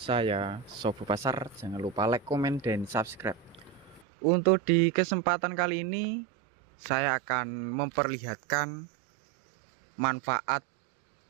Sobo Pasar. Jangan lupa like, komen, dan subscribe. Untuk di kesempatan kali ini, saya akan memperlihatkan manfaat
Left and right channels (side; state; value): left; drops out; at 4.0 s